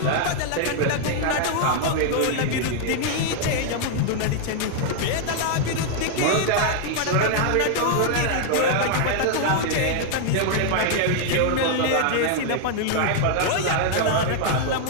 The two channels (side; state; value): both; different; correlation 0.00